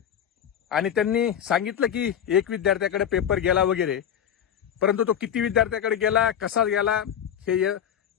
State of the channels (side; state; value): right; quieter; 9.2 dB